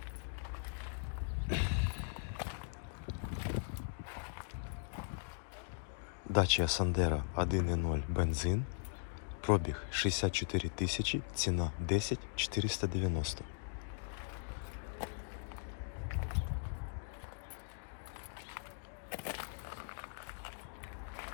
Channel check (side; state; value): right; silent; digital silence